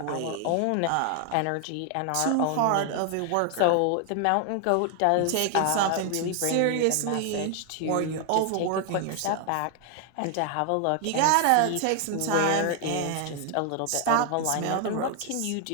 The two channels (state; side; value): different; both; correlation 0.00